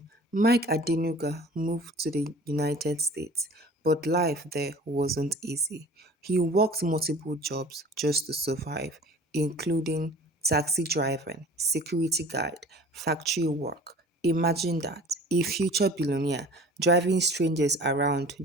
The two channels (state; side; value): normal; both; correlation 0.45